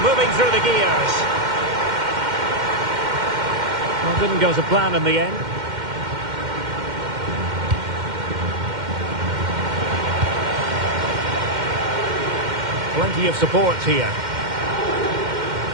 moving through the gears. Well, didn't go to plan in the end. Plenty of support here.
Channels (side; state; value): left; late; 2.1 ms